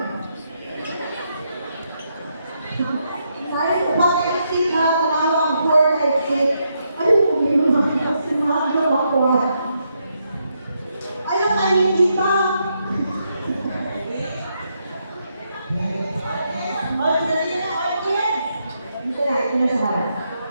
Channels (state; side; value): inverted; both; correlation -0.80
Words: Saya pakai exit ha, talawang 4 exit. Ayaw ko may mga sinado ako. Ayaw kayo kita. Ito na sa harap.